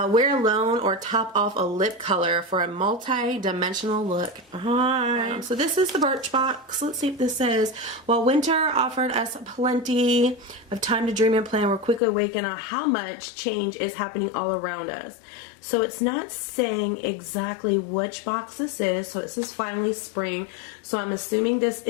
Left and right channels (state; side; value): drops out; right; at 12.0 s